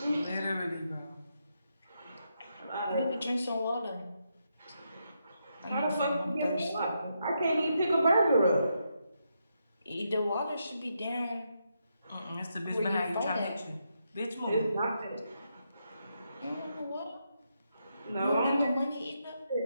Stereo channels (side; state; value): both; inverted; correlation -0.81